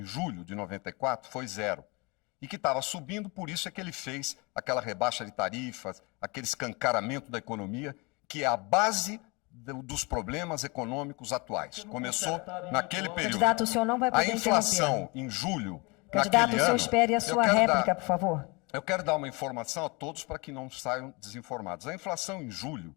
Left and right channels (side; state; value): right; quieter; 27.7 dB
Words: julho de 94 foi 0. E que estava subindo, por isso é que ele fez aquela rebaixa de tarifas, aquele escancaramento da economia, que é a base dos problemas econômicos atuais. Começou naquele período. Candidato, o senhor não vai poder a inflação em julho, candidato, o senhor espere a sua réplica, por favor. Eu quero dar uma informação a todos para que não saiam desinformados. A inflação em julho